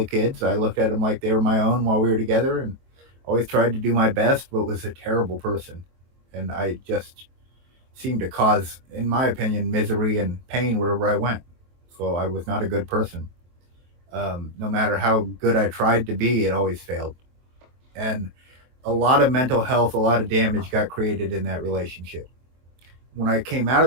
kids. I looked at them like they were my own while we were together, and always tried to do my best, but was a terrible person. And I just seemed to cause, in my opinion, misery and pain wherever I went. So I was not a good person. No matter how good I tried to be, it always failed. And a lot of mental health, a lot of damage got created in that relationship. When I came out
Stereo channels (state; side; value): late; left; 23 ms